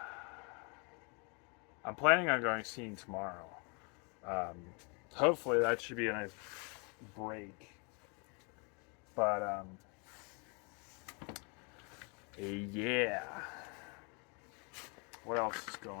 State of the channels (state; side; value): quieter; right; 34.0 dB